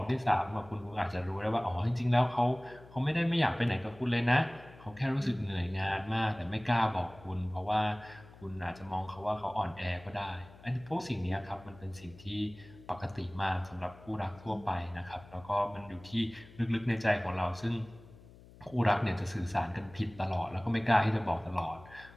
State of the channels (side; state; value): left; noise; hum, 21 dB below the sound